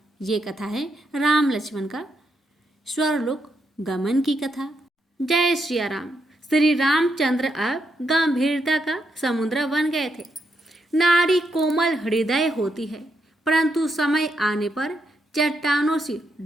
ये कथा है राम लक्ष्मण का स्वर्गलोक गमन की कथा। जय श्री राम। श्री रामचंद्र अब गंभीरता का समुद्र बन गए थे। नारी कोमल हृदय होती है, परंतु समय आने पर चट्टानों से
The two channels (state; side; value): normal; both; correlation 0.80